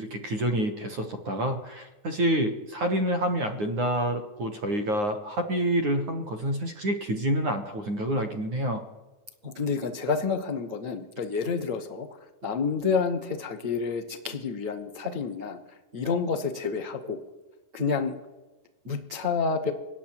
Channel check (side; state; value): left; late; 8.9 ms